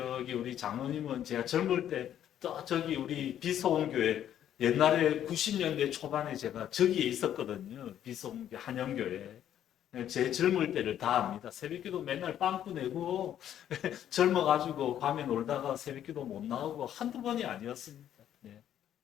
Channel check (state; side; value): quieter; right; 10.6 dB